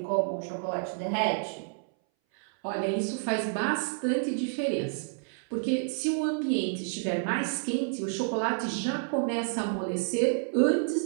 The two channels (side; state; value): left; silent; 58 dB below the other